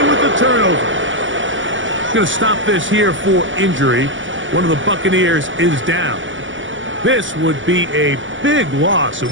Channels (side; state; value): left; late; 0.56 ms